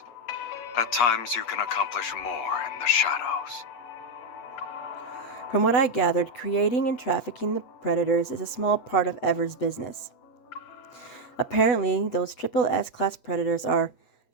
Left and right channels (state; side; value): late; right; 8.2 ms